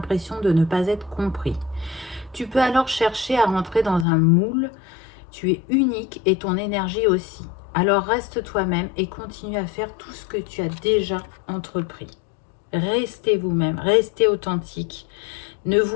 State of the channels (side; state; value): right; drops out; at 4.0 s